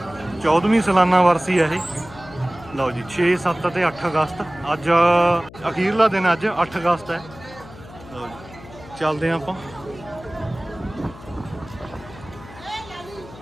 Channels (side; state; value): left; noise; hum, 18 dB below the sound